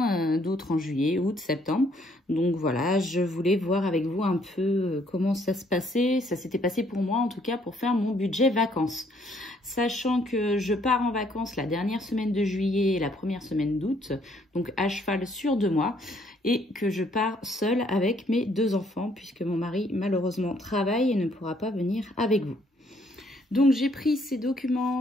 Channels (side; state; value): both; normal; correlation 0.66